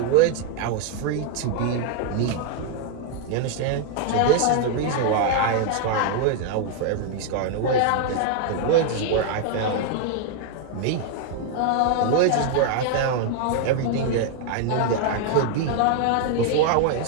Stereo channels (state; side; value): different; both; correlation 0.00